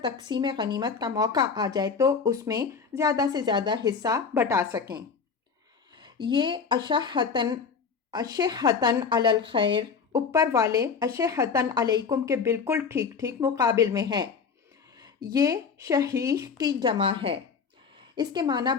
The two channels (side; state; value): right; quieter; 5.7 dB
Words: تقسیم غنیمت کا موقع آ جائے تو اس میں زیادہ سے زیادہ حصہ بٹا سکیں۔ یہ اشحتن علی الخیر اوپر والے اشحتن علیکم کے بالکل ٹھیک ٹھیک مقابل میں ہے۔ یہ شحیح کی جمع ہے، اس کے معنی